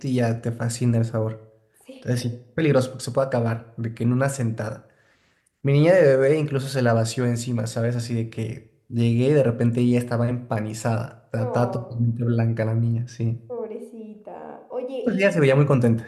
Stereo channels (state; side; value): identical; both; correlation 1.00